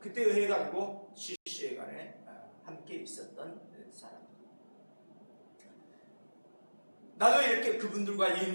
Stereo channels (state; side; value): inverted; both; correlation -1.00